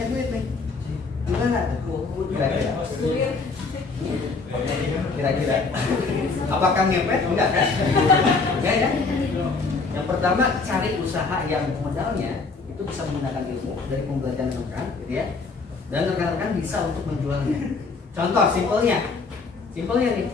duit nih, gimana? Kira-kira, apakah ngepet? Enggak kan? Enggak ya? Yang pertama, cari usaha yang modalnya itu bisa menggunakan ilmu dari pembelajaran rekan, gitu ya, dan rekan-rekan bisa untuk menjualnya. Contoh simpelnya nih,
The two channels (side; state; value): right; quieter; 4.2 dB